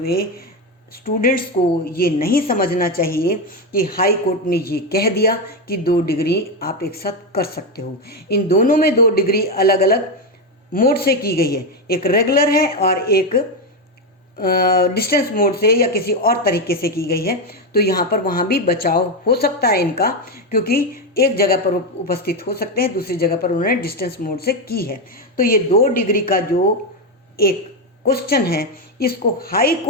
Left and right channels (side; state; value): both; normal; correlation 0.09